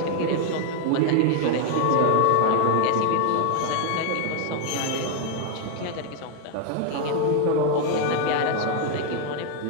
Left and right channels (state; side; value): different; both; correlation 0.00